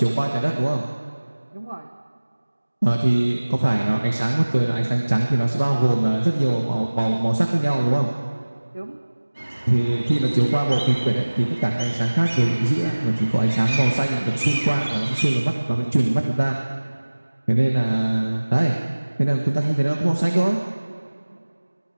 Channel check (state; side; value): inverted; both; correlation -1.00